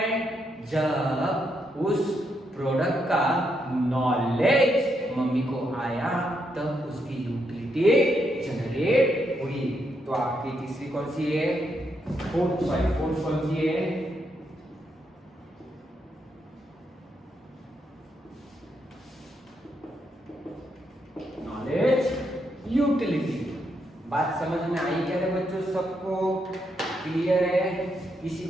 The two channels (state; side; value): normal; both; correlation 0.79